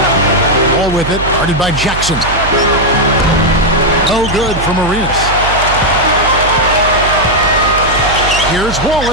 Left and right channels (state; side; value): noise; right; hum, 7 dB below the sound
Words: All with it, guarded by Jackson. No good from Arenas. Here's